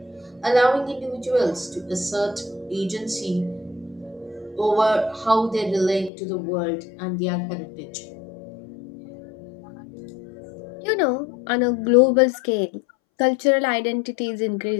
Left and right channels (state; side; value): drops out; right; at 6.1 s